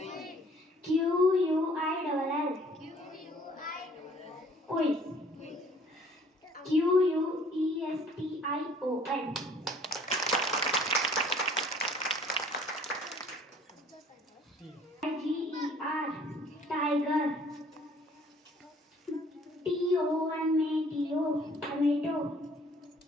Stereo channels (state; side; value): normal; both; correlation 0.56